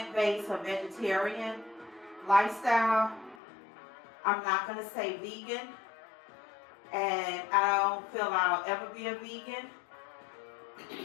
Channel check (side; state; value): right; drops out; at 3.4 s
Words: or vegetarian lifestyle. I'm not going to say vegan, and I don't feel I'll ever be a vegan.